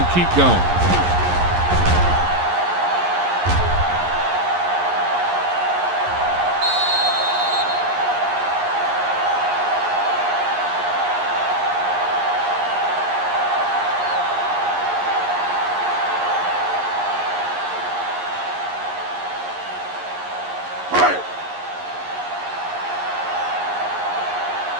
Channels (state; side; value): late; left; 11 ms